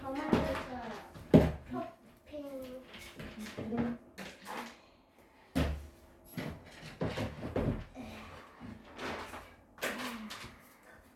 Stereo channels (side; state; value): both; identical; correlation 1.00